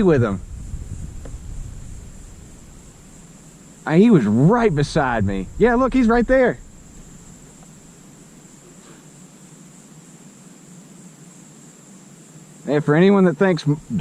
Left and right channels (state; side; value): identical; both; correlation 1.00